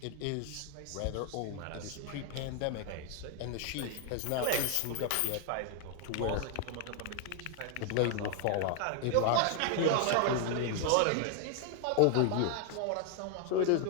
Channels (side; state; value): both; different; correlation 0.00